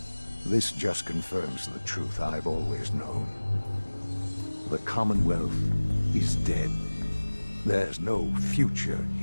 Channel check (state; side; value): inverted; both; correlation -1.00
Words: this just confirms the truth I've always known. The Commonwealth is dead. There's no future